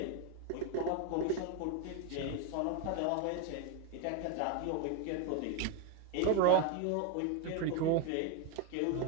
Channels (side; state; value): both; different; correlation 0.01